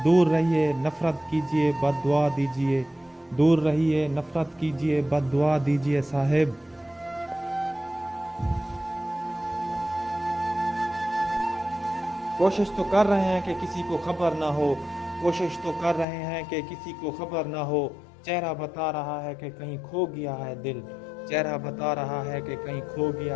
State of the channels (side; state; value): right; drops out; at 16.1 s